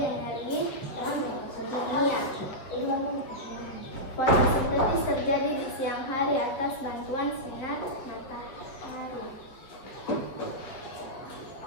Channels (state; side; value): late; right; 7.5 ms